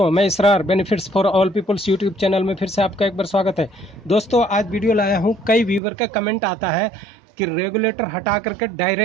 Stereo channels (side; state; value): left; drops out; at 5.8 s